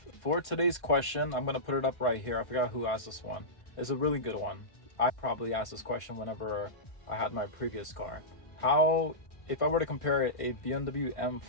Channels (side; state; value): right; late; 1.5 ms